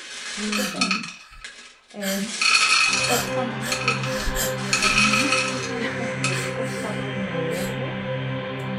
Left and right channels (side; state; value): both; identical; correlation 1.00